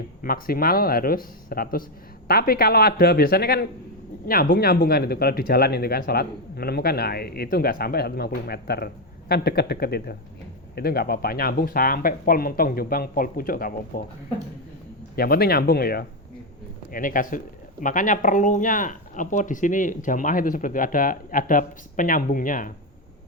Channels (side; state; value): both; normal; correlation 0.07